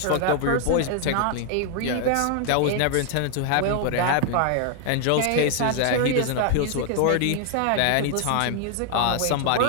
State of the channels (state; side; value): different; both; correlation 0.00